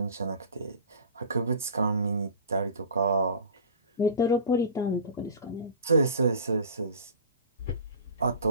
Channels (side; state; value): both; inverted; correlation -0.37